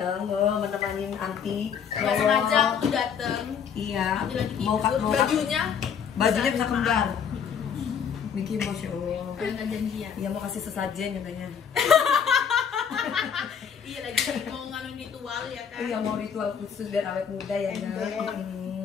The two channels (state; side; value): quieter; right; 7.4 dB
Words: menemani Anti. Nggak sengaja aku tuh dateng. Iya. Mau bajunya bisa kembar. Mickey Masya Allah. nggak janjian. Iya mau kasih sesajen katanya. Iya lagi mau nganu ritual ya kan. Iya mau ritual khusus biar awet muda ya kan.